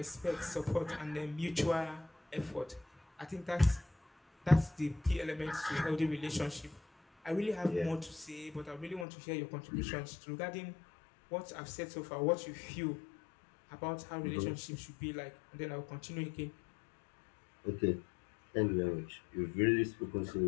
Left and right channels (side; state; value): right; drops out; at 9.1 s